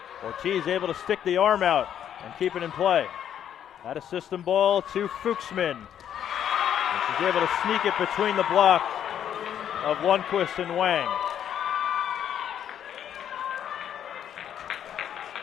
Ortiz able to stick the arm out and keep it in play. Out of system ball to Fuchsman. And she's able to sneak it between the block of Lundquist and Wang.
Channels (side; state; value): right; quieter; 9.7 dB